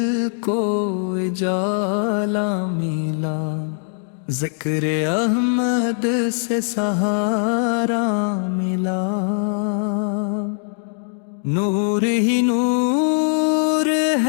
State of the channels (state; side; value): silent; right; digital silence